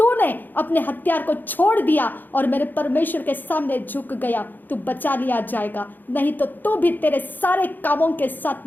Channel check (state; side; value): late; right; 0.088 ms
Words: अपने हथियार को छोड़ दिया और मेरे परमेश्वर के सामने झुक गया तो बचा लिया जाएगा, नहीं तो तू भी तेरे सारे कामों के